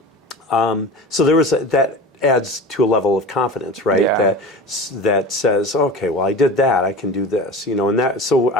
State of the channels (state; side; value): normal; both; correlation 0.33